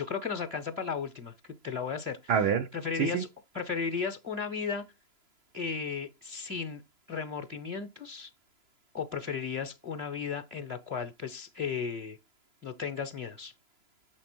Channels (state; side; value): late; left; 3.0 ms